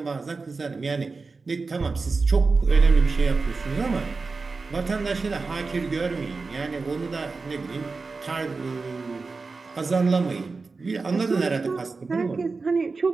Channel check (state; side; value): quieter; left; 4.1 dB